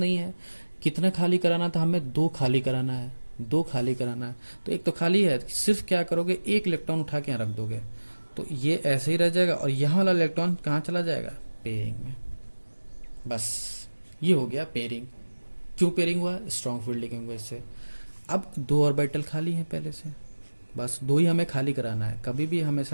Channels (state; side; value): inverted; both; correlation -1.00